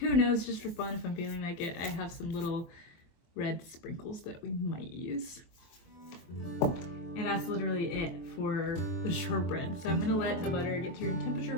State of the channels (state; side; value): late; right; 23 ms